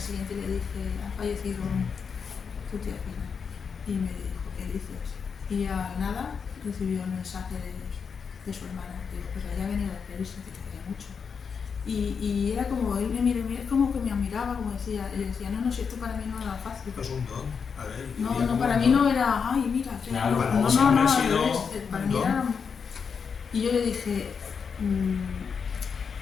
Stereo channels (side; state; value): right; quieter; 6.1 dB